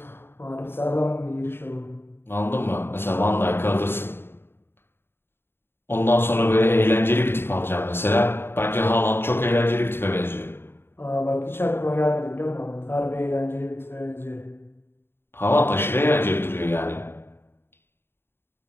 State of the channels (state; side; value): late; right; 0.11 ms